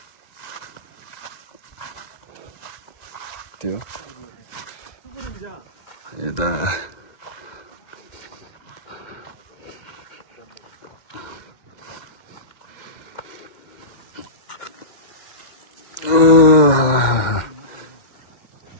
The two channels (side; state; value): right; late; 2.0 ms